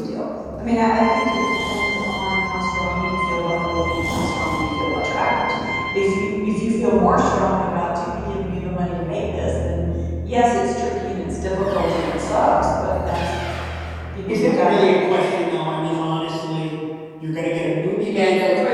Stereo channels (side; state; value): both; identical; correlation 1.00